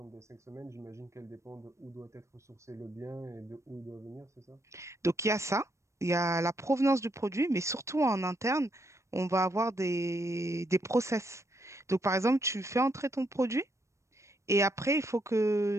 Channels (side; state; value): left; late; 0.14 ms